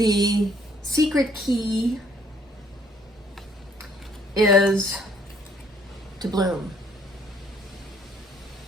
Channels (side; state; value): both; normal; correlation 0.63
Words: secret key is to bloom.